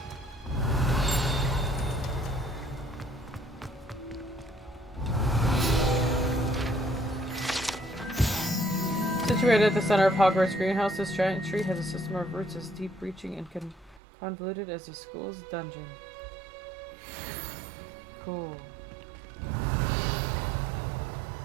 Situated at the center of Hogwarts Greenhouse, this giant tree has a system of roots as deep-reaching and convoluted as the school's dungeon. Cool.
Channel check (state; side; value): drops out; left; at 14.0 s